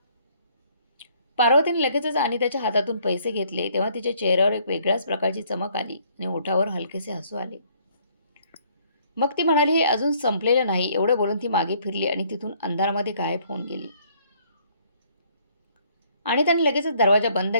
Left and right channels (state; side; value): inverted; both; correlation -0.64